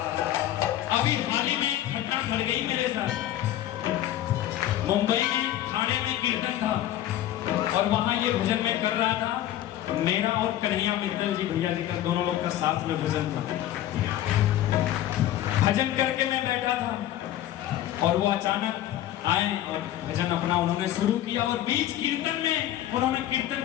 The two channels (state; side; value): quieter; right; 12.8 dB